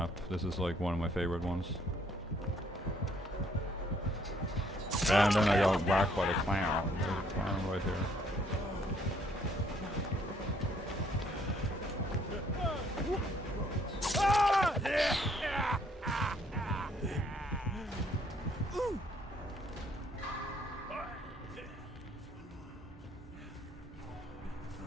This is like one of my favorite ones. And then I got whacked by the clown. There's a clown right here.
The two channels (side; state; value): both; normal; correlation 0.65